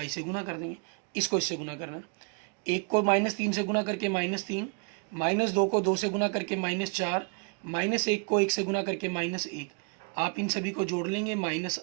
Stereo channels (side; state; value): left; quieter; 35.9 dB